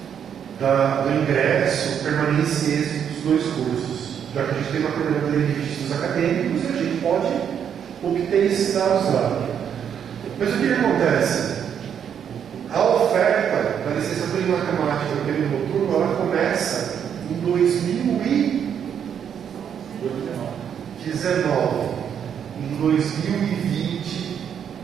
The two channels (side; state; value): left; quieter; 8.3 dB